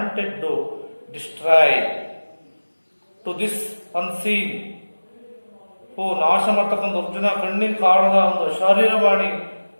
to destroy to this unseen, ನಾಶ ಮಾಡ್ತಕ್ಕಂಥ ಅರ್ಜುನ ಕಣ್ಣಿಗೆ ಕಾಣದ ಒಂದು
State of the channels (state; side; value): inverted; both; correlation -1.00